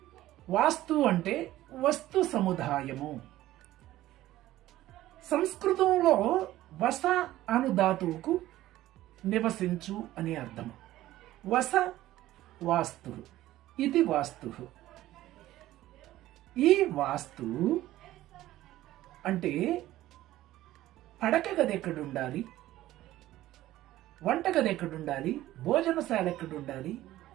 వాస్తు అంటే వస్తు సముదాయము. సంస్కృతంలో వస అను ధాతువుకు నివసించు అని అర్థం. వస వాస్తు, ఇది వాస్తు. ఈ వాస్తు అంటే పడక గది ఎక్కడుండాలి, వంటగది ఎక్కడుండాలి, భోజనశాల ఎక్కడుండాలి,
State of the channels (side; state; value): left; quieter; 15.1 dB